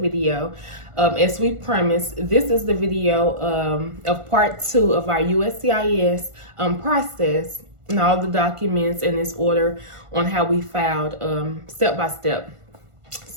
As we promised, this is the video of part 2 of our USCIS process and all the documents in this order on how we filed step by step.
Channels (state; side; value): late; left; 1.5 ms